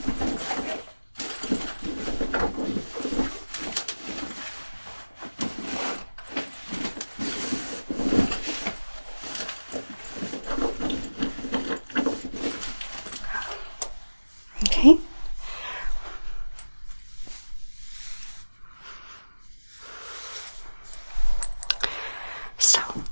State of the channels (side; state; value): both; inverted; correlation -1.00